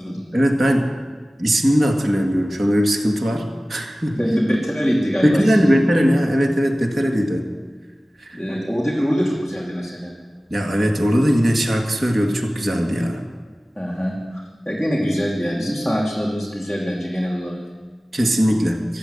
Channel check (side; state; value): both; normal; correlation 0.97